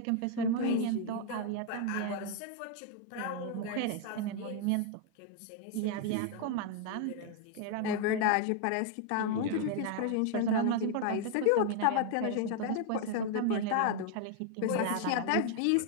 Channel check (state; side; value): different; both; correlation 0.00